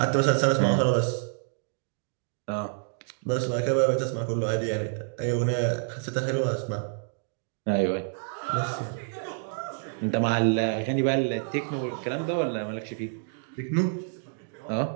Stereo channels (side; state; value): left; silent; digital silence